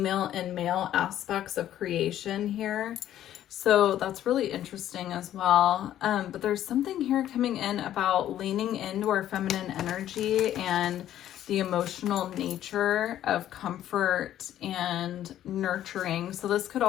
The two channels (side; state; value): right; quieter; 11.9 dB